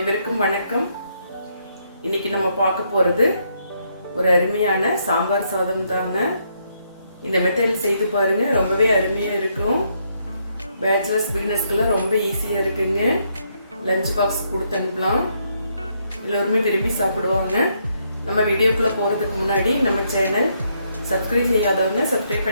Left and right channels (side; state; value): both; inverted; correlation -0.75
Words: வணக்கம். இன்னைக்கு நம்ம பார்க்க போகிறது ஒரு அருமையான சாம்பார் சாதம் தாங்க. இந்த மெத்தடில் செய்து பாருங்க, ரொம்பவே அருமையாக இருக்கும். பேச்சுலர்ஸ் பிகினர்ஸ்க்கெல்லாம் ரொம்ப ஈஸியாக இருக்குங்க. லஞ்ச் பாக்ஸ் கொடுத்து அனுப்பலாம், எல்லோருமே விரும்பி சாப்பிடுவாங்க. நம்ம வீடியோக்குள்ளே போகிறதுக்கு முன்னாடி நம்ம சேனல் சப்ஸ்கிரைப் செய்யாதவங்க சப்ஸ்கிரைப்